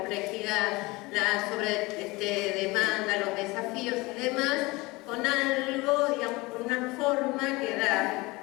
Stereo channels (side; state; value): right; quieter; 23.0 dB